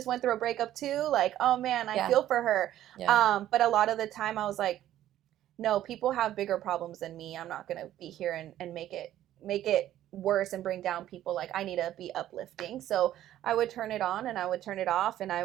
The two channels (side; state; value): left; quieter; 12.7 dB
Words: went through a breakup too. Like, oh man, I feel for her. Yeah. But a lot of the time I was like, no, people have bigger problems than me. I'm not gonna be here and make it worse and bring down people. Like, I need to be uplifting. So I would turn it on and I would turn it off, and I